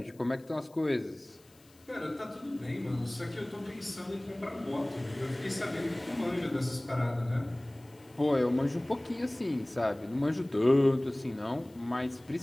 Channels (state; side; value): noise; left; hiss, 29 dB below the sound